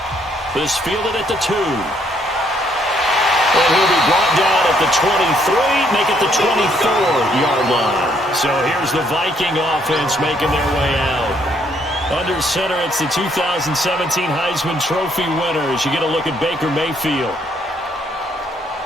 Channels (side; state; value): both; normal; correlation 0.69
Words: This fielded at the 2. And he'll be brought down at the 23, make it the 24-yard line. So here's the Viking offense making their way out. Under center, it's the 2017 Heisman Trophy winner as you get a look at Baker Mayfield.